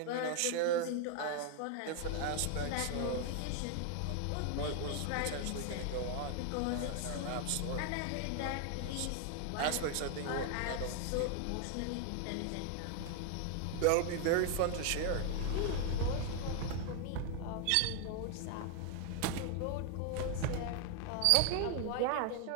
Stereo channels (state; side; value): different; both; correlation 0.00